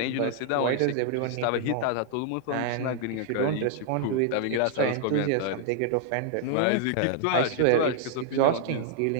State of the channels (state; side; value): different; both; correlation 0.00